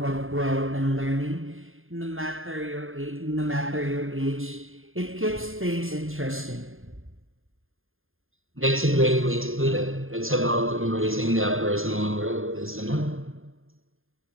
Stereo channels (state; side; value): late; left; 0.60 ms